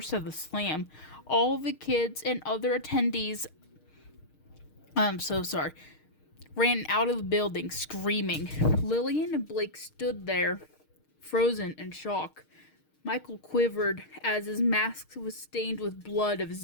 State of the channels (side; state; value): right; late; 6.5 ms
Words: of the slam. All the kids and other attendees, ran out of the building screaming. Lillian and Blake stood there, frozen in shock. Michael quivered as his mask was stained with blood of